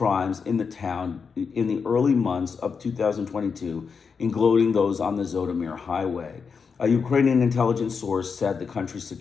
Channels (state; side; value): quieter; right; 5.7 dB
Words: in the town in the early months of 2022, including those on the Zhytomyr Highway. A Ukrainian intelligence source said the country's